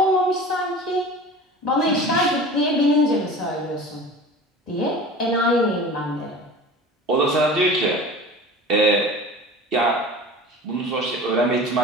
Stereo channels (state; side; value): normal; both; correlation 0.38